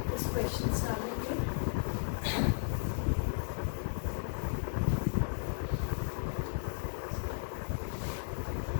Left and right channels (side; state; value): right; silent; digital silence